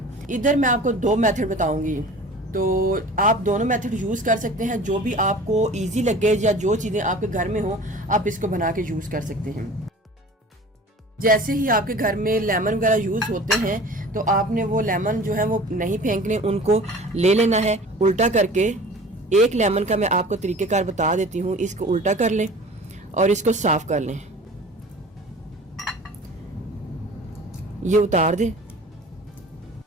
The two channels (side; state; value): both; normal; correlation 0.42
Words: इधर मैं आपको दो मेथड बताऊंगी, तो आप दोनों मेथड यूज़ कर सकते हैं। जो भी आपको इजी लगे या जो चीज़ें आपके घर में हो, आप इसको बना के यूज़ कर सकते हैं। जैसे ही आपके घर में लेमन वगैरह यूज़ होते हैं, तो आपने वो लेमन जो है वो नहीं फेंकने, उनको ले लेना है उल्टा करके। एक लेमन का मैं आपको तरीक़ेकार बता देती हूँ। इसको उल्टा कर लें और इसको साफ कर लें। ये उतार दें।